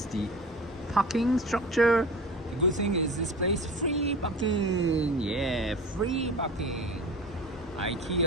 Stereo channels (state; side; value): normal; both; correlation 0.36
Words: the parking structure. The good thing is this place free parking. Yeah, free parking.